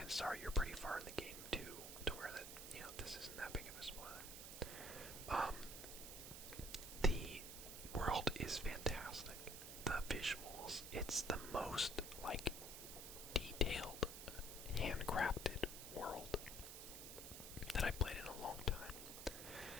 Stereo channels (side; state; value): right; noise; hiss, 9 dB below the sound